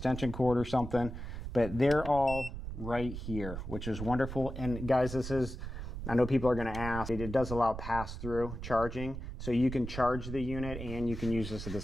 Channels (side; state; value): right; noise; rumble, 8 dB below the sound